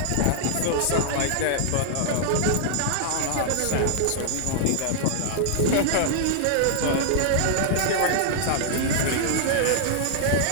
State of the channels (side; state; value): both; different; correlation -0.01